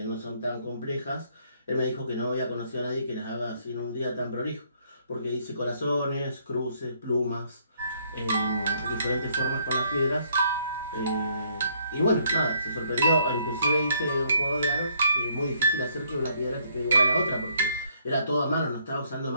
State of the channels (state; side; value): inverted; both; correlation -0.68